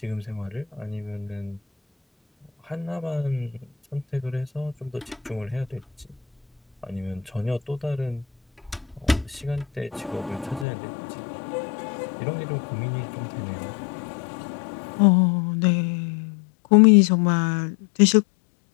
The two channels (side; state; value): right; drops out; at 10.7 s